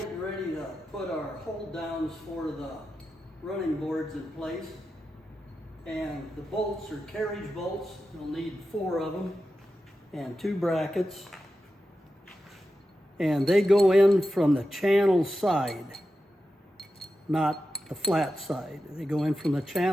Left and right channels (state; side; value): normal; both; correlation 0.91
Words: ready to put our hold downs for the running boards in place. And the bolts are carriage bolts. You'll need 4 of them and 2 brackets. And they go in from the channel side, not the flat side. They go in from the